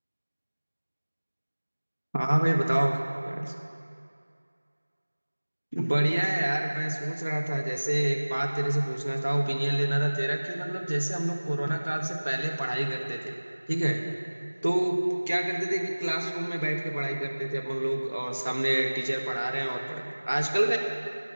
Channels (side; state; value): both; inverted; correlation -1.00